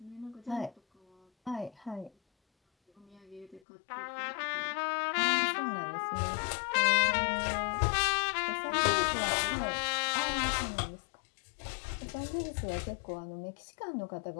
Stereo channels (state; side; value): drops out; right; at 3.6 s